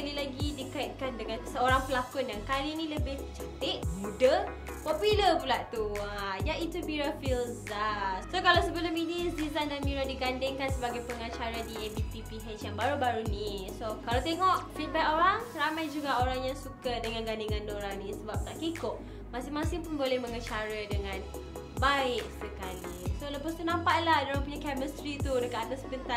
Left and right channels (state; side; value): identical; both; correlation 1.00